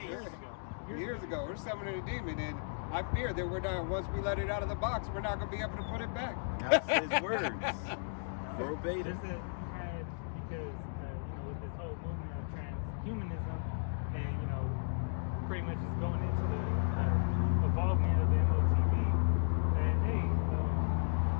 face. Years ago, we're summoning a demon, and I fear that we're not. Once we let it out of the box, we're not going to be able to put it back. That's his words. Verbatim. There's because, you know, with this whole movement of transhumanism and, you know, pretty much just going into the evolvement of the MOTB, that, hey,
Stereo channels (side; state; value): right; silent; digital silence